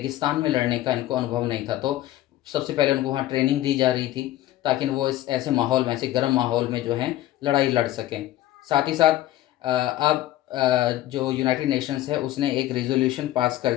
में लड़ने का इनको अनुभव नहीं था। तो सबसे पहले उनको वहाँ ट्रेनिंग दी जा रही थी ताकि वो इस ऐसे माहौल में, ऐसे गर्म माहौल में जो है लड़ाई लड़ सकें। साथ ही साथ अब जो यूनाइटेड नेशंस है उसने एक रेजोल्यूशन पास कर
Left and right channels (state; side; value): quieter; right; 14.6 dB